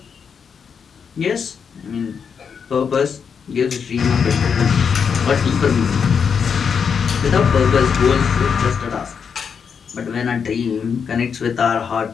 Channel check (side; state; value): right; quieter; 6.6 dB